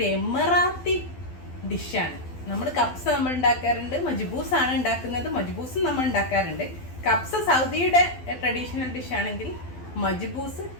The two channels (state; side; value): late; right; 12 ms